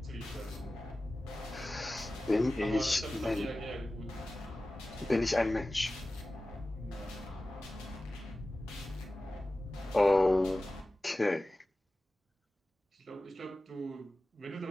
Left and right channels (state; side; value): normal; both; correlation 0.96